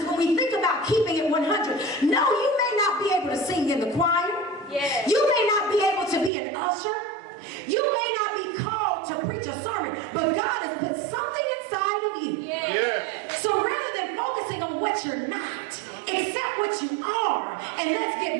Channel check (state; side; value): drops out; left; at 6.3 s